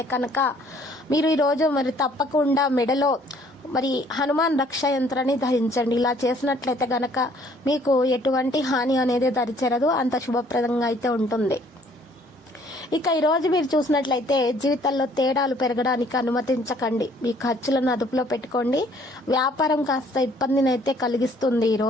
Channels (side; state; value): both; normal; correlation 0.60